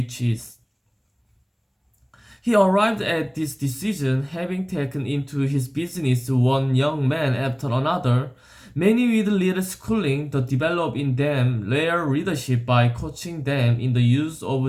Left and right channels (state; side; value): identical; both; correlation 1.00